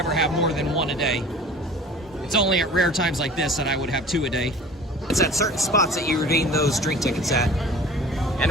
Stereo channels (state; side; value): normal; both; correlation 0.43